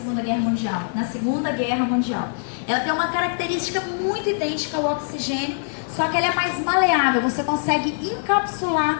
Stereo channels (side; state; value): right; silent; digital silence